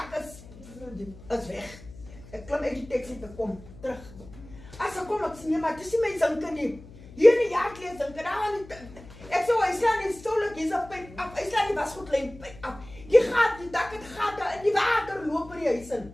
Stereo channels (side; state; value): left; noise; hum, 19 dB below the sound